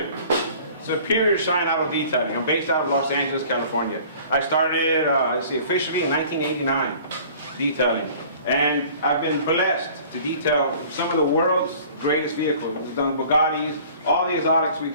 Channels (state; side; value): inverted; both; correlation -0.49